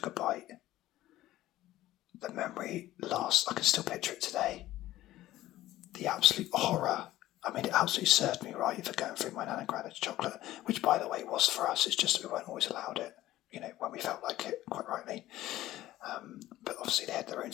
a bite. The memory lasts. I can still picture it today. The absolute horror. I mean, it absolutely served me right for going through my nan and granddad's chocolate, which, by the way, was for us. It's just that we weren't always allowed it, when we felt like it, quite rightly. But obviously they had their own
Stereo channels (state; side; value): quieter; right; 15.1 dB